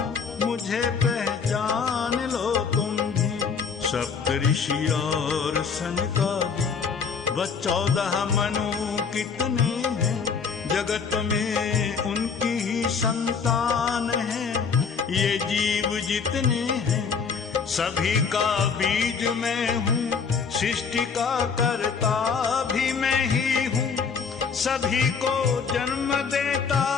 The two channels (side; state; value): right; quieter; 5.8 dB